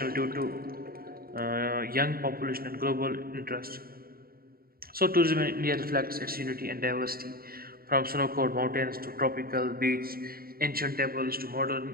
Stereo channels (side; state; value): left; late; 0.43 ms